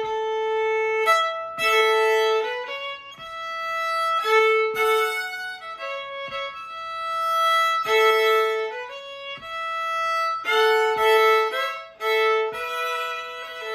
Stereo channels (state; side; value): identical; both; correlation 1.00